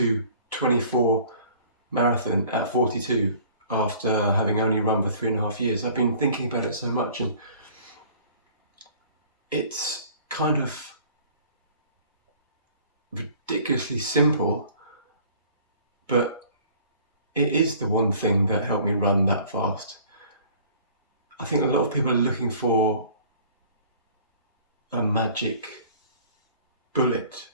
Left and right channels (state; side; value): inverted; both; correlation -0.51